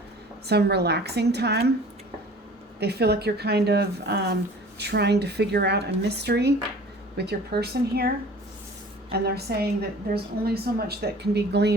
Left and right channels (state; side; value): normal; both; correlation 0.45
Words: some relaxing time. They feel like you're kind of trying to figure out a mystery with your person here. And they're saying that there's only so much that can be